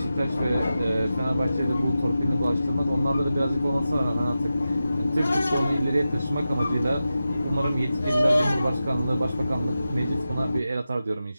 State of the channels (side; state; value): both; inverted; correlation -0.92